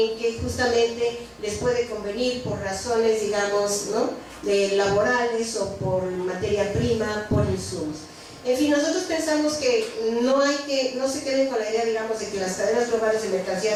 que justamente les puede convenir por razones, digamos, ¿no?, laborales o por materia prima, por insumos. En fin, nosotros pensamos que no se queden con la idea, digamos, de que las cadenas globales de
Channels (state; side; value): identical; both; correlation 1.00